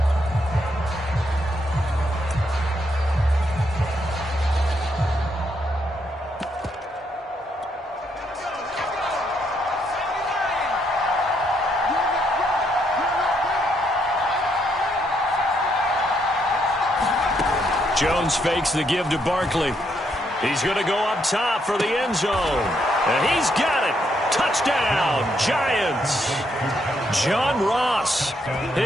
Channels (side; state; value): both; normal; correlation 0.75